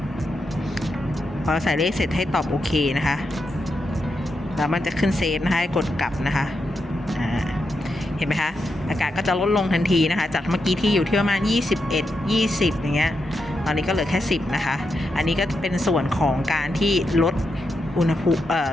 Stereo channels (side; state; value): both; normal; correlation 0.85